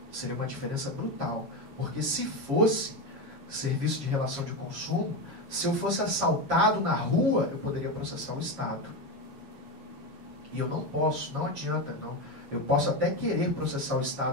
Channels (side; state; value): left; late; 7.4 ms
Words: seria uma diferença brutal, porque se fosse serviço de relação de consumo, se eu fosse assaltado na rua, eu poderia processar o Estado. E eu não posso, não adianta, não. Eu posso até querer processar o